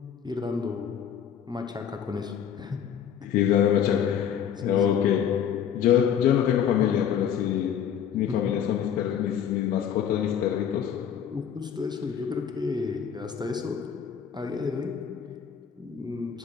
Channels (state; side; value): quieter; right; 8.6 dB